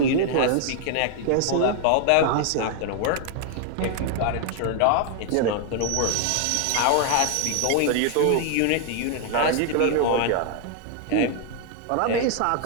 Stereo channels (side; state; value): both; different; correlation 0.00